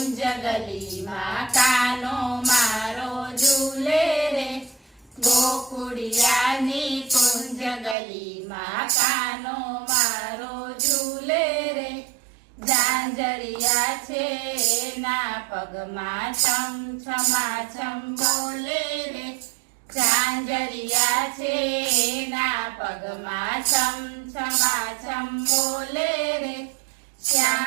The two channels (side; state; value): left; drops out; at 8.0 s